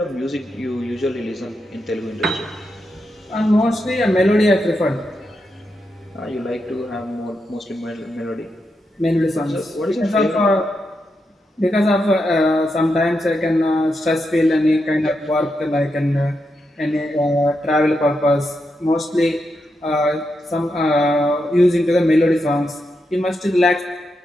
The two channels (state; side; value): normal; both; correlation 0.85